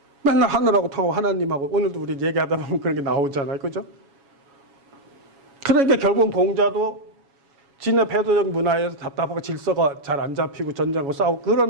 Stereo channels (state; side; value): late; left; 7.2 ms